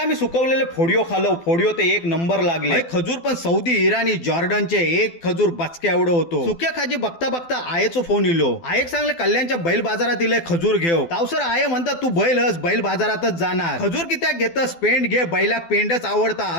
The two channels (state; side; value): late; right; 12 ms